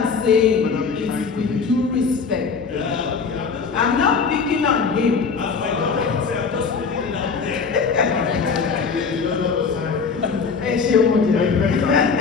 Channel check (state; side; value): quieter; right; 5.3 dB